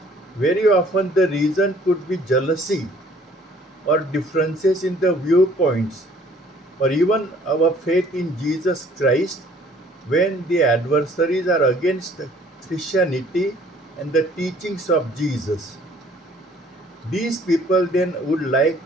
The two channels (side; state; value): both; normal; correlation 0.57